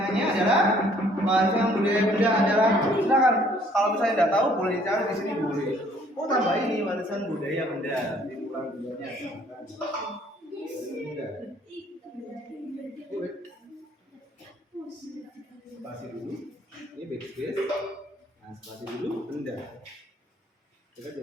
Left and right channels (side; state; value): both; normal; correlation 0.60